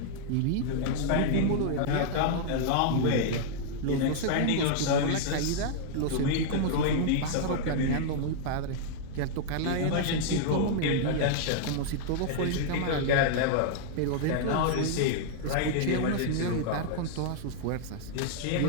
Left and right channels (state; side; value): different; both; correlation -0.01